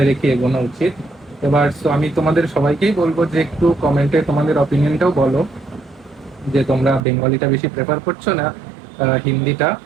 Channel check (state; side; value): drops out; left; at 7.0 s